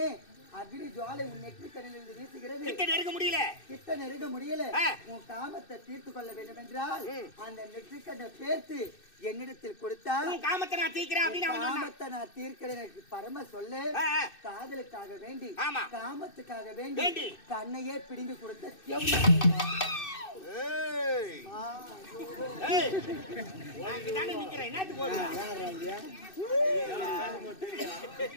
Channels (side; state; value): right; late; 2.6 ms